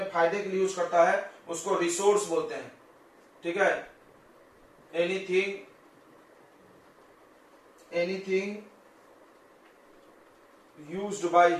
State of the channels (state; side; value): identical; both; correlation 1.00